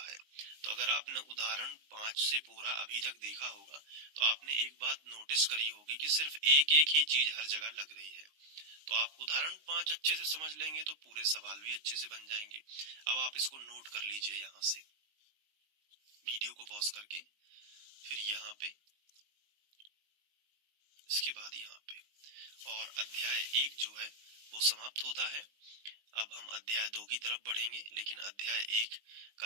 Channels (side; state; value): left; late; 19 ms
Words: है। तो अगर आपने उदाहरण 5 से पूरा अभी तक देखा होगा तो आपने एक बात नोटिस करी होगी कि सिर्फ एक एक ही चीज हर जगह लग रही है। तो आप उदाहरण 5 अच्छे से समझ लेंगे तो पूरे सवाल भी अच्छे से बन जाएंगे। अब आप इसको नोट कर लीजिए, यहाँ से वीडियो को पॉज करके, फिर यहाँ पे, इसके बाद यहाँ पे, और अध्याय 1 जो है वो समाप्त होता है। अब हम अध्याय 2 की तरफ बढ़ेंगे, लेकिन अध्याय 1